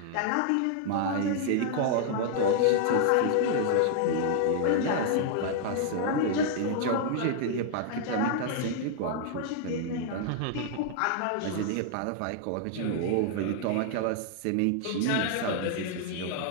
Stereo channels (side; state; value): both; different; correlation 0.00